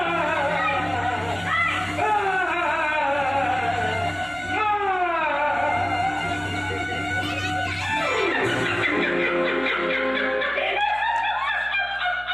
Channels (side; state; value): right; noise; hum, 20 dB below the sound